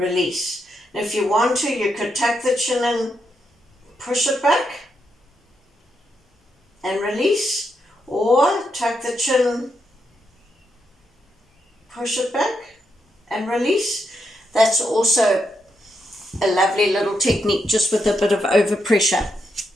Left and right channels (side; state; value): both; normal; correlation 0.82